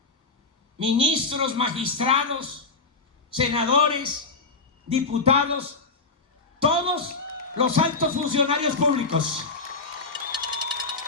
ministros, magistrados, senadores, diputados, todos los altos funcionarios públicos,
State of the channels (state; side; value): quieter; right; 3.8 dB